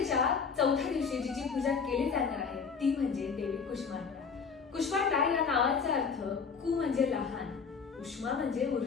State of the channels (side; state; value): right; quieter; 5.7 dB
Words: चौथ्या दिवशी जिची पूजा केली जाणार आहे ती म्हणजे देवी कुष्मांडा। कुष्मांडा या नावाचा अर्थ कु म्हणजे लहान, उष्मा म्हणजे